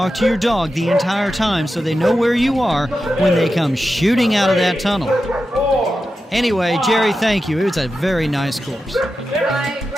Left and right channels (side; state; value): both; normal; correlation 0.90